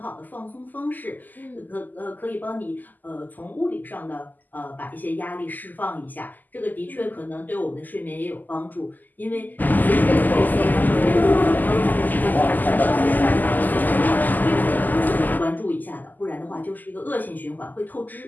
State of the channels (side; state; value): right; late; 0.085 ms